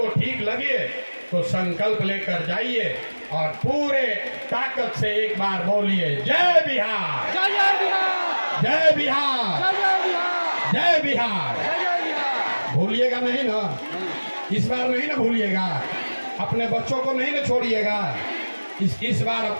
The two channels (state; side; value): inverted; both; correlation -1.00